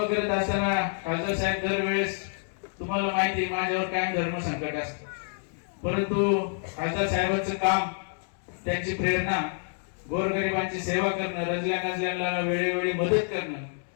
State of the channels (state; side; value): silent; right; 57 dB below the other